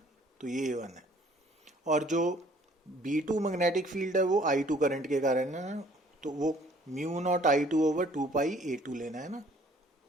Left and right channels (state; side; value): normal; both; correlation 0.58